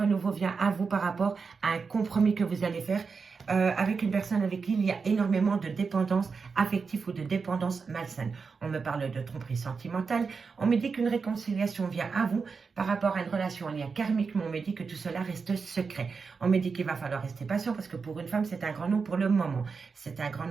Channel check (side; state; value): left; quieter; 5.1 dB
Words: vient à vous par rapport à un compromis que vous allez faire avec une personne avec qui il y a énormément de dépendance affective ou de dépendance malsaine. On me parle de tromperie sentimentale. On me dit qu'une réconciliation vient à vous par rapport à une relation en lien karmique, mais on me dit que tout cela reste secret. On me dit qu'il va falloir rester patient parce que pour une femme, c'est un grand nom pour le moment. C'est un grand